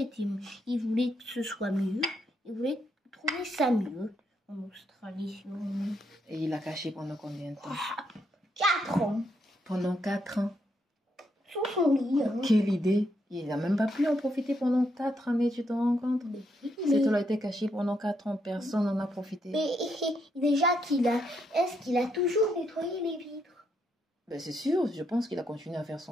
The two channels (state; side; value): normal; both; correlation 0.77